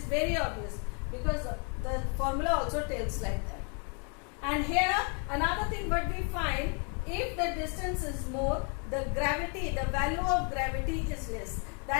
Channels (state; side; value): quieter; right; 38.1 dB